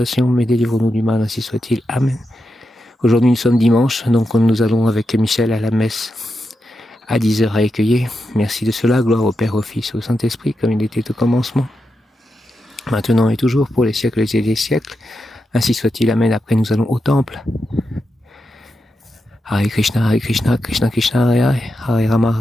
mais délivre-nous du mal, ainsi soit-il. Amen. Aujourd'hui, nous sommes dimanche, donc nous allons avec Michel à la messe à 10h à Écueillé. Merci de cela, gloire au Père, au Fils, au Saint-Esprit, comme il était au commencement, maintenant et toujours, pour les siècles et des siècles. Ainsi soit-il. Amen. Après, nous allons au temple. Hare Krishna, Krishna Krishna, Hare Hare, Hare Rama,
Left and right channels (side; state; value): both; normal; correlation 0.87